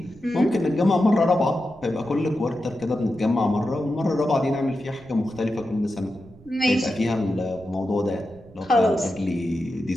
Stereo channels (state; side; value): noise; right; rumble, 23 dB below the sound